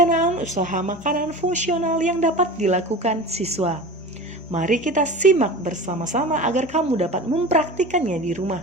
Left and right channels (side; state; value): both; normal; correlation 0.33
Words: usaha makanan fungsional yang dapat dilakukan siswa. Mari kita simak bersama-sama agar kamu dapat mempraktikannya di